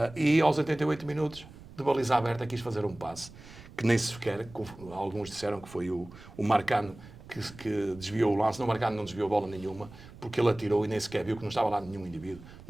e aos 88 minutos de baliza aberta quis fazer um passe, que nem sequer, alguns disseram que foi o Marcano que desviou o lance. Não, o Marcano não desviou bola nenhuma, porque ele atirou e nem sequer viu que não estava lá nenhum indivíduo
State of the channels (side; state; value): right; noise; rumble, 18 dB below the sound